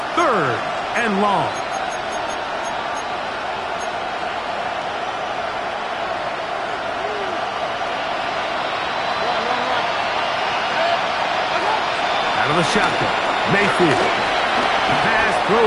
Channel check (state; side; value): identical; both; correlation 1.00